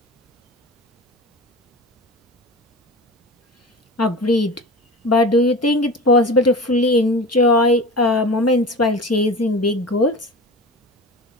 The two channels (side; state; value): both; normal; correlation 0.32